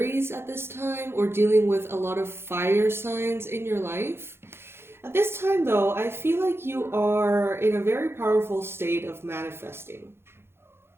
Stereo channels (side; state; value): left; late; 0.12 ms